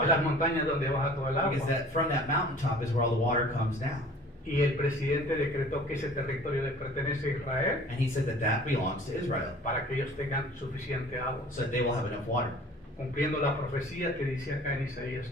las water. montañas donde baja todo el Because agua. that from that mountaintop is where all the water comes down. Y el presidente decretó que ese territorio le pertenece a Israel And he said that that belongs to Israel, para que ellos tengan suficiente agua, so that they will have enough water, cumpliendo la profecía que dice acá en Isaías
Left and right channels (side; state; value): both; normal; correlation 0.48